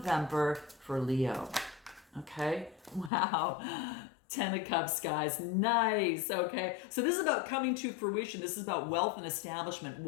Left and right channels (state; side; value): drops out; right; at 3.1 s